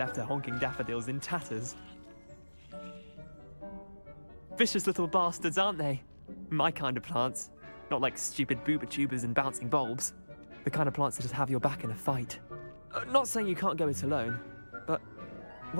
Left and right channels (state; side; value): inverted; both; correlation -1.00